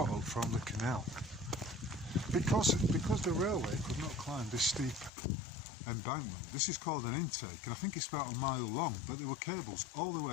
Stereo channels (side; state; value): right; drops out; at 5.1 s